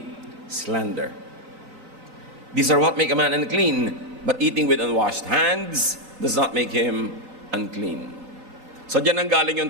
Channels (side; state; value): left; late; 3.8 ms